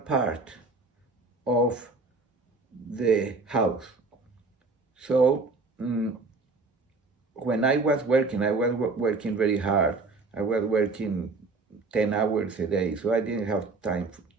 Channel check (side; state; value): left; quieter; 3.8 dB